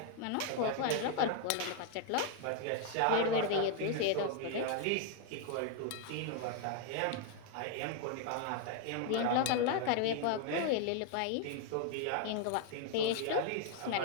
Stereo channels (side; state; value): both; different; correlation 0.00